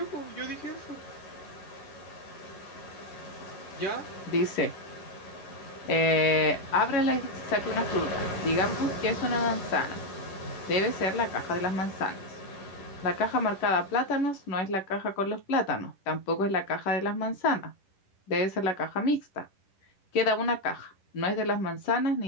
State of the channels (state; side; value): late; right; 10 ms